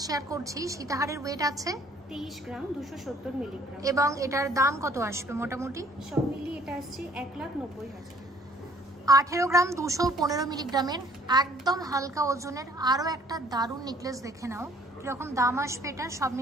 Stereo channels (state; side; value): normal; both; correlation 0.59